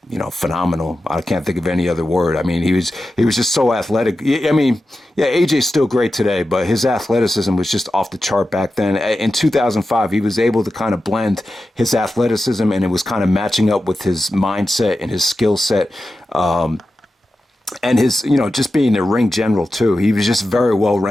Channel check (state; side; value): normal; both; correlation 0.92